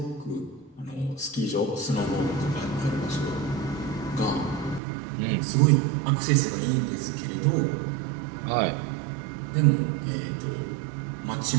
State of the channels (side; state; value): left; drops out; at 4.8 s